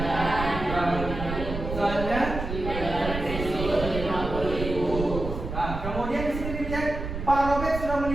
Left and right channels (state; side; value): noise; right; rumble, 6 dB below the sound